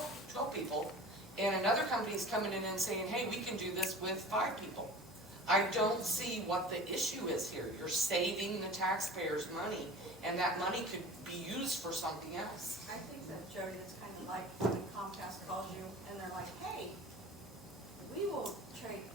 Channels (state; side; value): noise; left; hum, 23 dB below the sound